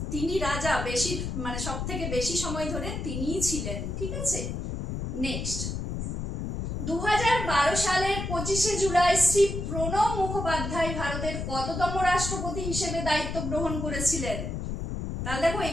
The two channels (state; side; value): noise; left; rumble, 4 dB below the sound